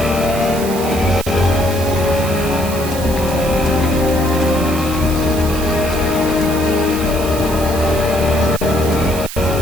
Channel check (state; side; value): noise; right; hiss, 10 dB below the sound